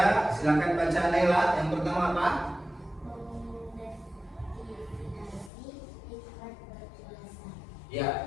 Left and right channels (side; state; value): right; drops out; at 5.5 s